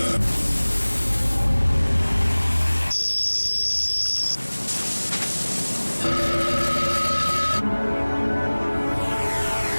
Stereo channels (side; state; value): both; inverted; correlation -1.00